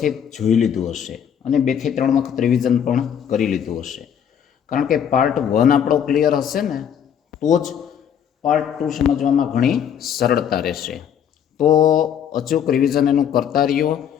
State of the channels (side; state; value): right; quieter; 8.6 dB